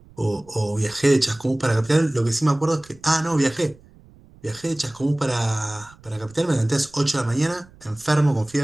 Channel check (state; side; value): noise; right; rumble, 26 dB below the sound